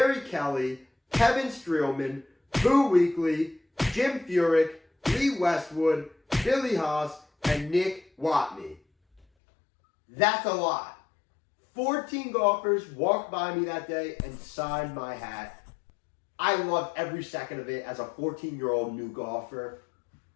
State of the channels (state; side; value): drops out; right; at 9.2 s